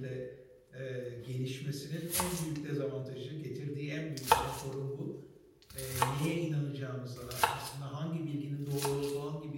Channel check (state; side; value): identical; both; correlation 1.00